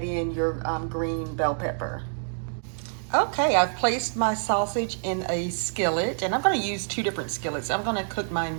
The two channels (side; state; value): left; silent; 58 dB below the other